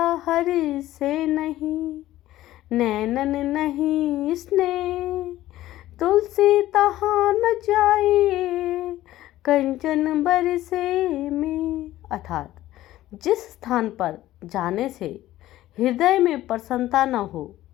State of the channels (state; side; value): quieter; right; 14.9 dB